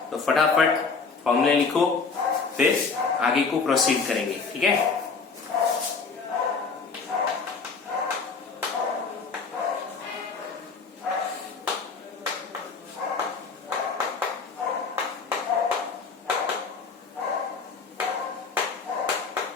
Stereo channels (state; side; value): quieter; right; 4.9 dB